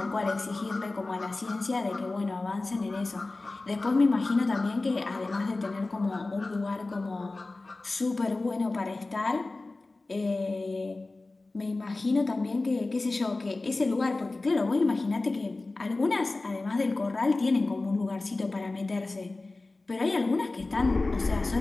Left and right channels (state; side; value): quieter; right; 3.2 dB